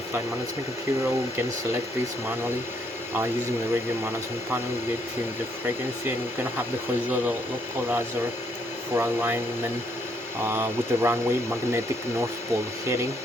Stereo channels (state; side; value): normal; both; correlation 0.71